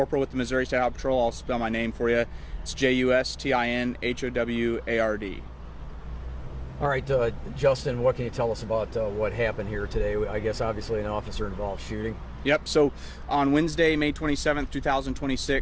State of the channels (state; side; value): identical; both; correlation 1.00